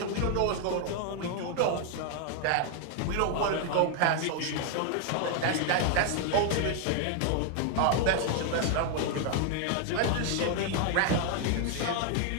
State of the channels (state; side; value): different; both; correlation 0.00